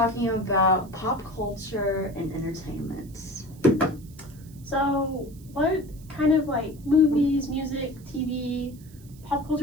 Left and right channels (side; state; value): right; noise; hiss, 25 dB below the sound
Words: about pop culture and entertainment. so what kind of like movies, music, TV, pop